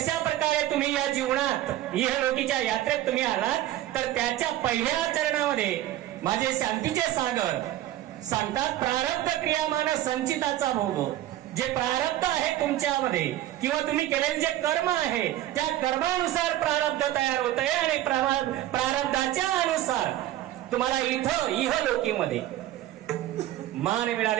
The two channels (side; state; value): left; quieter; 14.1 dB